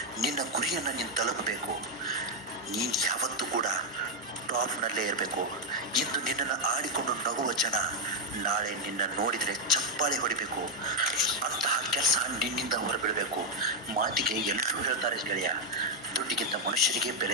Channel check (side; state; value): both; normal; correlation 0.02